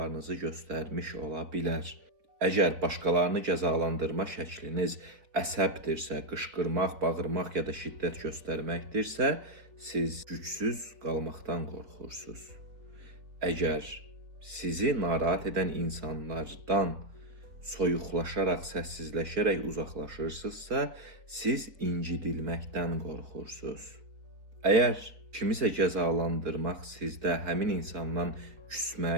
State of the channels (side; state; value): left; late; 4.1 ms